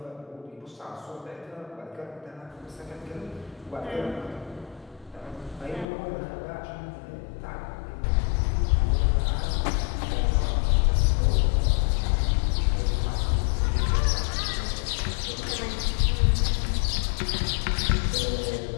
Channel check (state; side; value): drops out; right; at 5.9 s